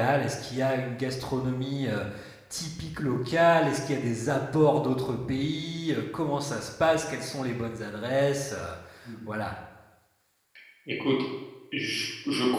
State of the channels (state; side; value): identical; both; correlation 1.00